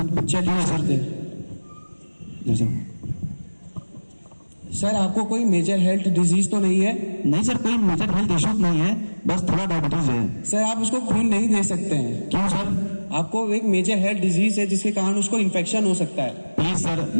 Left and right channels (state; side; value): inverted; both; correlation -1.00